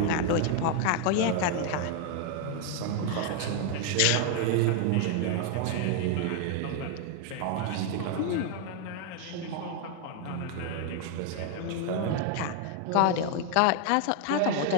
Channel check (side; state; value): both; different; correlation 0.00